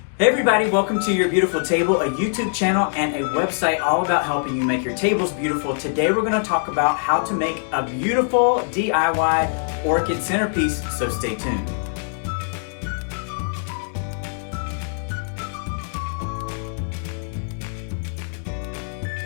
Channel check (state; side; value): silent; right; digital silence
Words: Hey everybody, welcome to Your Beautiful Table, a YouTube channel and a website all about helping you make your tables beautiful. Today we're going to talk about how to make a beautiful DIY orchid centerpiece, so stay tuned.